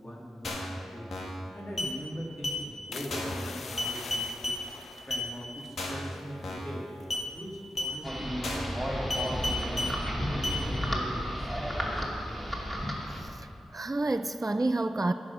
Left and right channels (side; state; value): both; normal; correlation 0.89